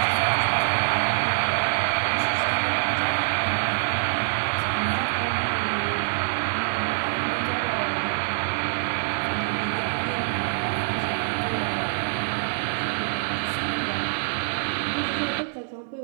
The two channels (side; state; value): left; silent; 62 dB below the other